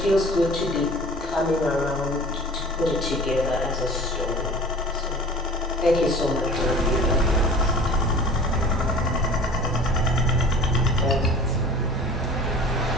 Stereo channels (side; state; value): both; normal; correlation 0.42